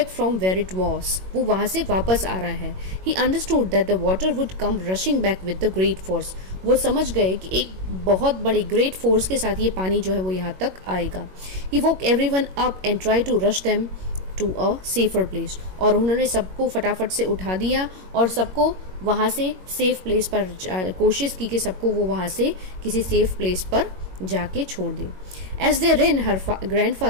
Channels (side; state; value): left; late; 21 ms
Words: from where it was, वो वहाँ से वापस आ रहा है। He understood that the water would come rushing back with the great force, वो समझ गए कि एक बहुत बड़े ग्रेट फोर्स के साथ ये पानी जो है वो यहाँ तक आएगा। He woke everyone up and try to rush them to a safer place, और उन्होंने सबको फटाफट से उठा दिया और सबको वहाँ से सेफ प्लेस पर कोशिश की कि सबको वो वहाँ से किसी सेफ प्लेस पर जाके छोड़ दे। As they ran, her